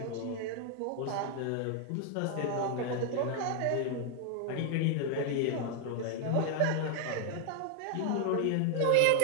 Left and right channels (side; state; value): both; different; correlation 0.00